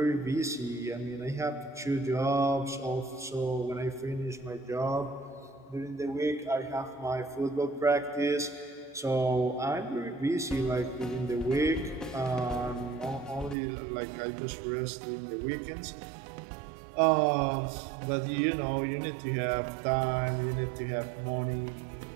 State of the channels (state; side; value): drops out; left; at 13.6 s